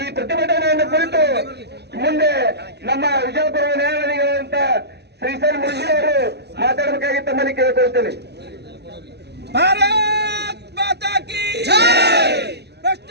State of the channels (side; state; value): left; late; 0.49 ms